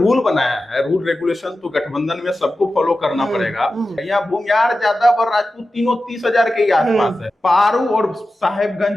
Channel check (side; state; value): both; normal; correlation 0.93